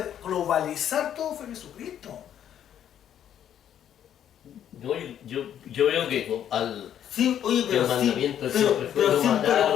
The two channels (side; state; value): right; quieter; 10.0 dB